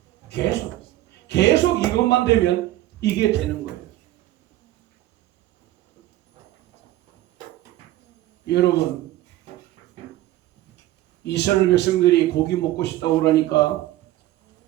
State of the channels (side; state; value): left; quieter; 15.3 dB